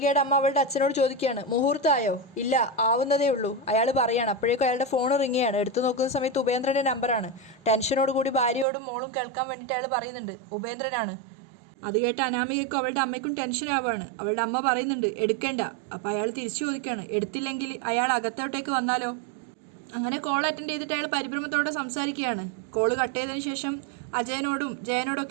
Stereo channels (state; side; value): drops out; left; at 8.7 s